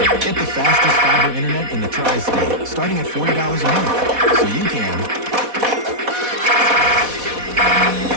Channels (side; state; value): left; late; 4.1 ms